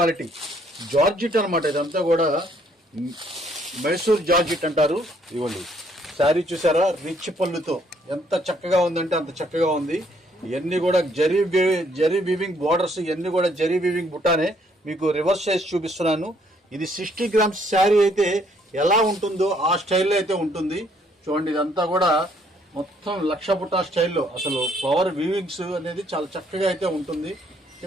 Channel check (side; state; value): both; normal; correlation 0.67